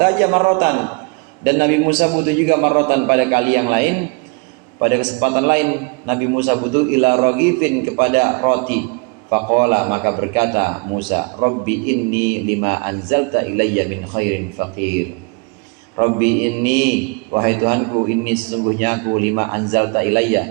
marrotan, dan Nabi Musa butuh juga marrotan pada kali yang lain, pada kesempatan lain Nabi Musa butuh ila ragifin, kepada roti. Faqala, maka berkata Musa, Rabbi inni lima anzalta ilayya min khairin faqir. Rabbi inni, wahai Tuhanku, inni sesungguhnya aku, lima anzalta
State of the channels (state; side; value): quieter; left; 31.6 dB